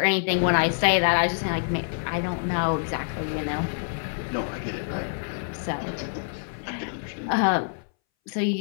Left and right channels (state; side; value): silent; right; 61 dB below the other